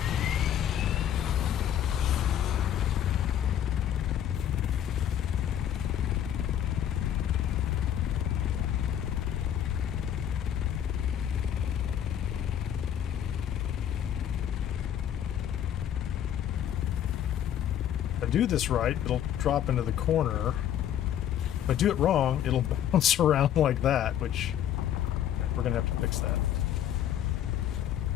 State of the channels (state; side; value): quieter; right; 10.3 dB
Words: Do this right, it'll drop into the corner. If I do it wrong, it'll bounce around like that, which we're gonna have to fix that.